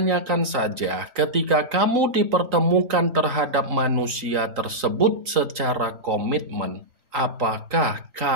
saja, ketika kamu dipertemukan terhadap manusia tersebut secara komitmen, apakah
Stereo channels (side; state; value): left; late; 3.8 ms